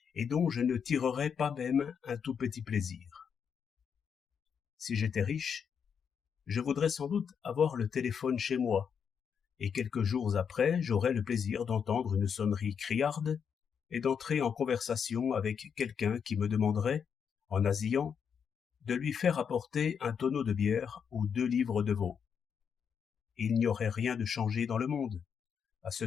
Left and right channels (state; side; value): quieter; right; 7.1 dB